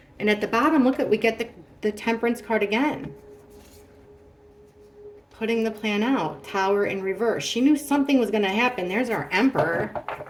And at the bottom, look at, we get the Temperance card again. Putting the plan out, Tower in reverse. She knew something was going to happen. There's our Emperor.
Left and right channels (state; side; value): identical; both; correlation 1.00